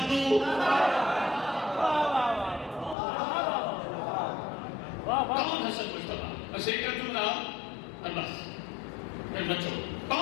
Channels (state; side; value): drops out; right; at 3.0 s